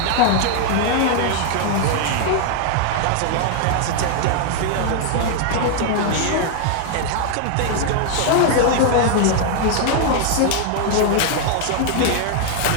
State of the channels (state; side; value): different; both; correlation 0.00